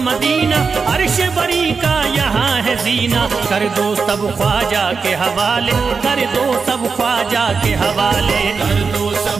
अर्श बरी का यहाँ है जीना, कर दो सब ख्वाजा के हवाले, कर दो सब ख्वाजा के हवाले, कर दो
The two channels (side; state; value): left; quieter; 5.1 dB